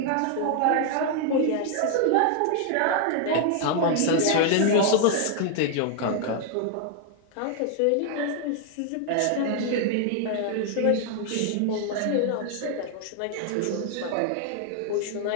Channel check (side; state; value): both; different; correlation 0.00